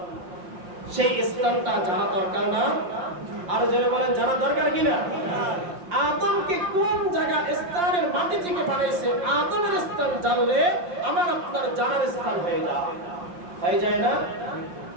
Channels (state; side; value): late; left; 5.7 ms